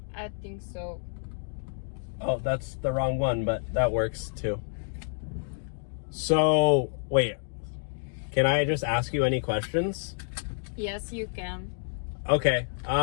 I think so. Oh, that's the wrong one, but that works too. So, wait. Can I just ask you any questions? Yes, you can. Okay.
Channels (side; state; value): right; silent; digital silence